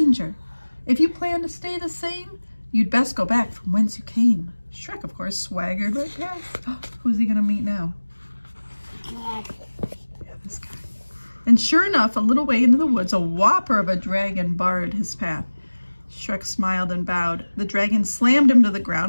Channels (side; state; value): both; inverted; correlation -1.00